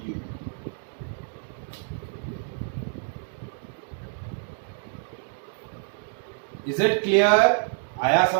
Is it clear? आया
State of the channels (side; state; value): left; silent; digital silence